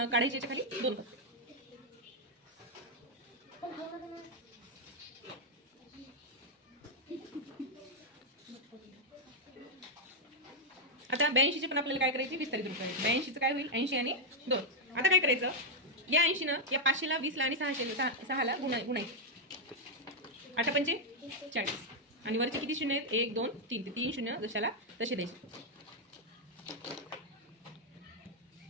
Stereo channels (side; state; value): both; normal; correlation -0.02